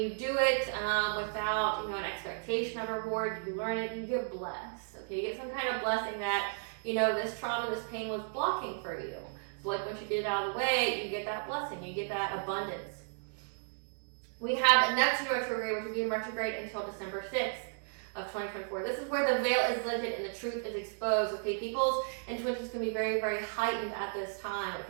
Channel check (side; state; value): left; silent; digital silence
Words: do it without, an expectation of reward, you learn it, you get blessed. Okay, you get some kind of blessing that, this trauma, this pain was blocking for you. So once you get it out of the way, you get that blessing, you get that abundance. We have Neptune retrograde, which will be in retrograde until December 6th of 2024. This is where the veil is lifted and the truth is exposed. Okay, people's intuitions can be very, very heightened at this time.